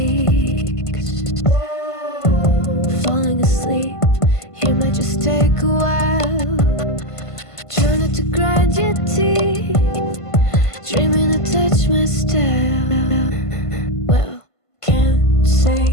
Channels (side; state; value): right; late; 1.5 ms